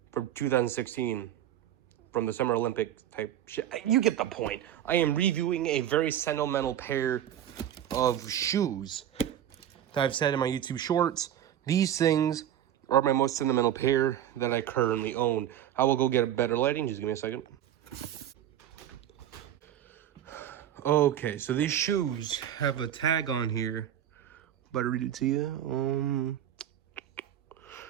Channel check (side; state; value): left; quieter; 11.1 dB